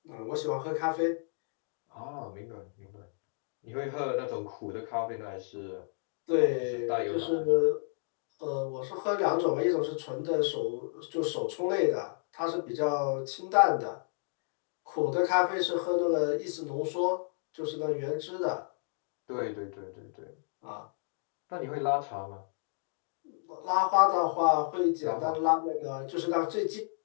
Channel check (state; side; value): silent; right; digital silence